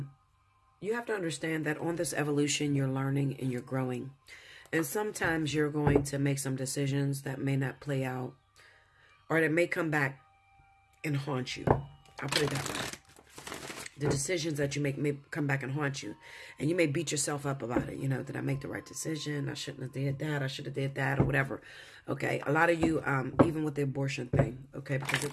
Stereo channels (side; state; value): both; identical; correlation 1.00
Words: You have to understand that on this evolution, you're learning and you're growing. And sometimes you're going to make some decisions that may not play out, or that may come back and haunt you. I'll put it that way. The decisions that you make may come back and haunt you. And you may beat yourself up about it. You know, did I make the right decision? I shouldn't have did that. I should have did that, or whatever. Okay, a lot of you, even with the abortion thing, okay, because